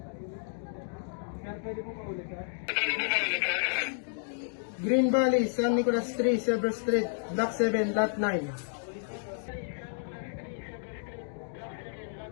Sir, pwede po paulit sir? Green Valley, San Nicolas Street, Silver Street, Block 7, Lot 9.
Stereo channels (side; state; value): right; silent; digital silence